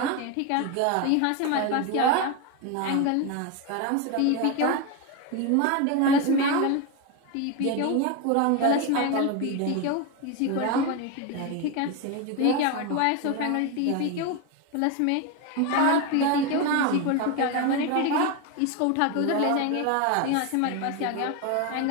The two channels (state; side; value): different; both; correlation 0.02